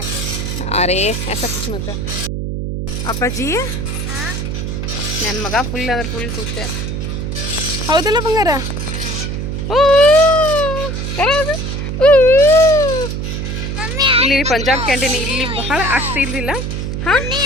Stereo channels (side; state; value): right; noise; hum, 3 dB below the sound